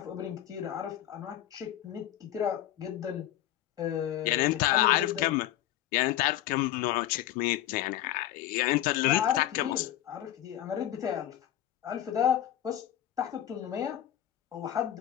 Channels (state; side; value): quieter; right; 12.7 dB